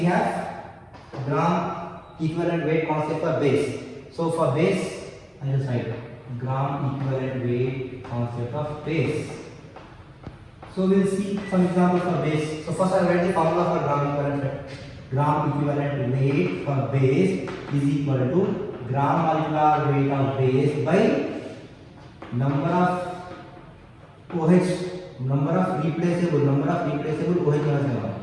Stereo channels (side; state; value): both; identical; correlation 1.00